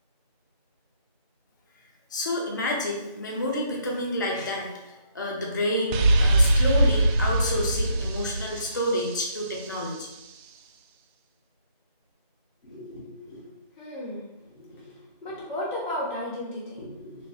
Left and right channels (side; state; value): both; inverted; correlation -0.69